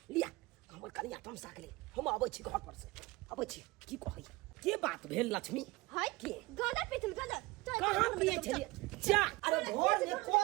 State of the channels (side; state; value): left; quieter; 21.6 dB